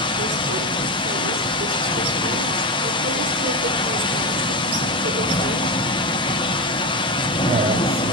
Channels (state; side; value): noise; right; hiss, 30 dB below the sound